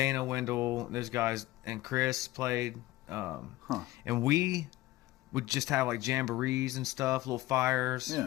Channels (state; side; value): quieter; right; 17.4 dB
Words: Wendell, those guys, and Chris played. And we would just have like jamborees and stuff, little fires,